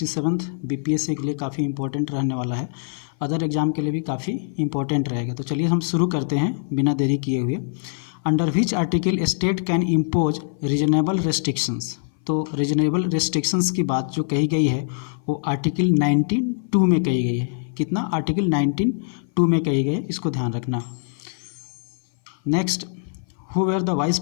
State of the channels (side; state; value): right; silent; 59 dB below the other